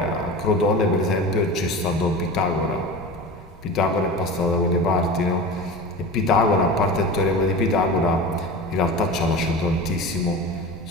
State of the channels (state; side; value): normal; both; correlation 0.31